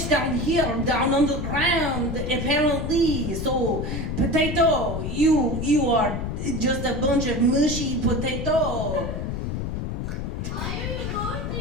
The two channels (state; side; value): noise; left; rumble, 3 dB below the sound